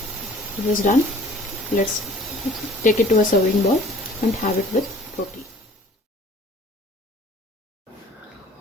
It is done. Let's take it to a serving bowl and have it with roti.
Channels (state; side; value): normal; both; correlation 0.51